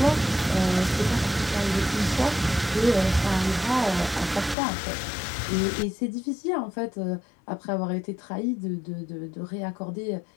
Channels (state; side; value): drops out; right; at 4.5 s